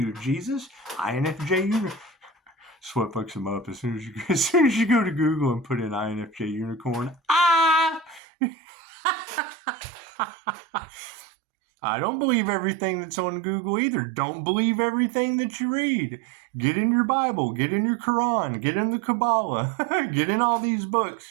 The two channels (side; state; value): left; drops out; at 8.2 s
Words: Jesus. INFJ Unicorn. That's what fucks them up. As soon as you go to Google and put in INFJ Unicorn. I don't believe everything that's on Google either. Don't believe everything that you read. Get in your Bible, get in your Quran, get in the Kabbalah, get in all these books.